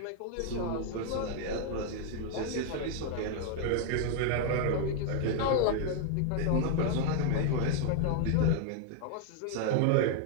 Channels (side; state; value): both; different; correlation 0.00